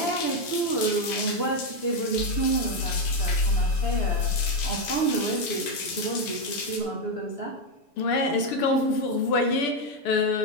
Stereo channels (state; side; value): late; right; 6.9 ms